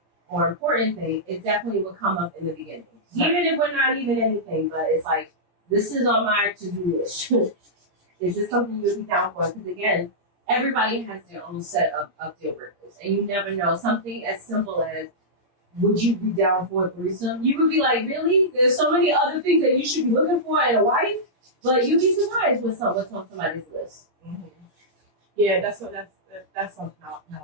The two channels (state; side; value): late; left; 17 ms